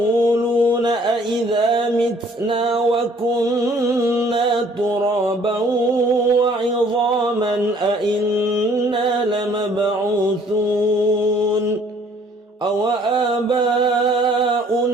أإذا متنا وكنا ترابا وعظاما أإنا لمبعوثون أو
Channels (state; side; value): normal; both; correlation 0.59